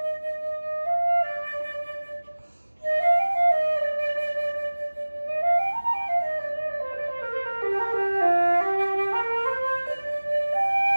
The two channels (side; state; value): both; inverted; correlation -1.00